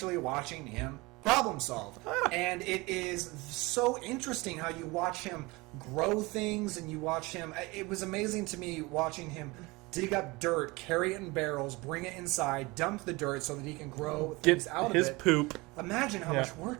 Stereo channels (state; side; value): quieter; left; 23.7 dB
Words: watching him problem solve. And it is so interesting how you watch him grow things and you watch him... It was amazing to me watching him dig up dirt, carry it in barrels, bring it inside, dump the dirt so that he can grow things out of it. His poop. Imagine how much